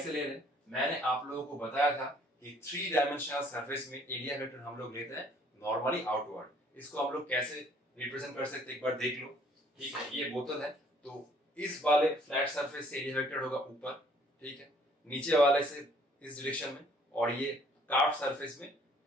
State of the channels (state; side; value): normal; both; correlation 0.60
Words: ले रहे हैं, मैंने आप लोगों को बताया था कि 3 डायमेंशनल सरफेस में एरिया वेक्टर हम लोग लेते हैं नॉर्मली आउटवर्ड। इसको हम लोग कैसे रिप्रेजेंट कर सकते हैं एक बार देख लो, ठीक है। ये बोतल है, तो इस वाले फ्लैट सरफेस से एरिया वेक्टर होगा ऊपर, ठीक है, नीचे वाले से इस डायरेक्शन में, और ये कार्व सरफेस में